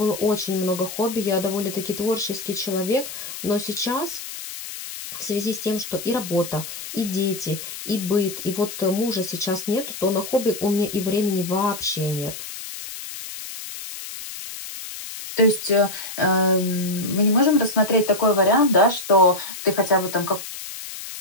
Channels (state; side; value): noise; left; hiss, 10 dB below the sound